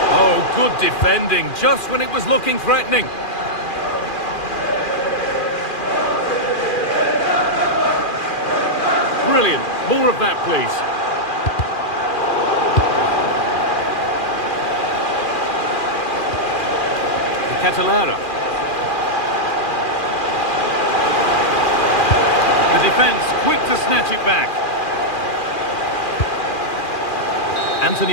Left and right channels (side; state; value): right; late; 2.4 ms